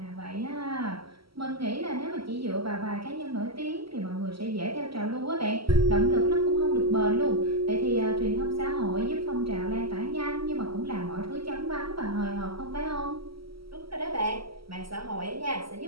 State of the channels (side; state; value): left; late; 0.75 ms